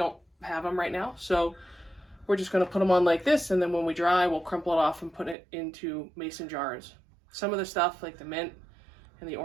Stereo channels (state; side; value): drops out; left; at 5.4 s